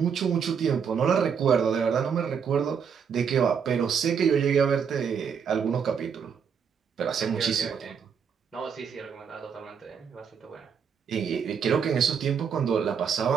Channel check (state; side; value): quieter; left; 7.0 dB